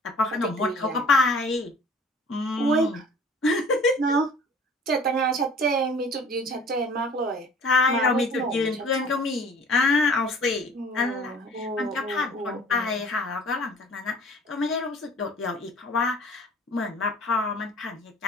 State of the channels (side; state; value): both; normal; correlation 0.48